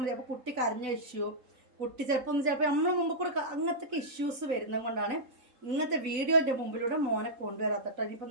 മതി. അപ്പോൾ കുട്ടി കരഞ്ഞ ഇഷ്യൂ, കുട്ടി ചിലപ്പോൾ നമ്മൾ മുമ്പ് കൂടെ അങ്ങനത്തെ ഇഷ്യൂസ് വരുന്നത് കൊണ്ടാണ് ഇങ്ങനത്തെ വീഡിയോൻ്റെ മുമ്പിലൂടെ മോനെ കൊണ്ടുവരാത്തട്ടോ. ഇനിയിപ്പോൾ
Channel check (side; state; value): left; late; 4.0 ms